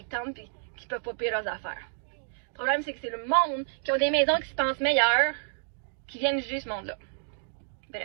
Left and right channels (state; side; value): silent; left; digital silence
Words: des tantes qui peuvent pas payer leurs affaires. Le problème, c'est que c'est le monde qui ont des maisons qui se pensent meilleures qui viennent juger ce monde-là.